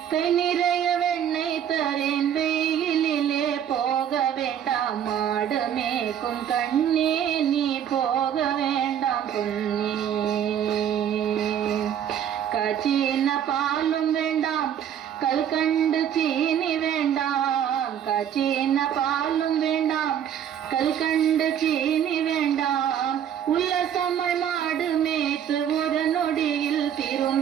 கை நிறைய வெண்ணெய் தரேன். வெயிலிலே போக வேண்டாம் மாடமேக்கும் கண்ணே நீ போக வேண்டாம் பொன்னே. காய்ச்சின பாலும் வேண்டாம் கல்கண்டு சீனி வேண்டாம். காய்ச்சின பாலும் வேண்டாம் கல்கண்டு சீனி வேண்டாம். உல்லசமாய் மாடு மேய்த்து ஒரு நொடியில்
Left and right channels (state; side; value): quieter; left; 9.4 dB